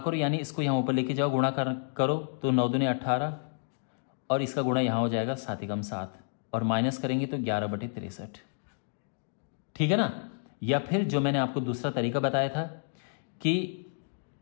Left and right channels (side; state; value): right; silent; digital silence